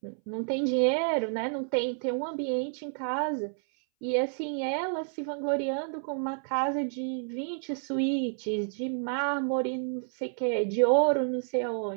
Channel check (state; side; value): silent; left; 58 dB below the other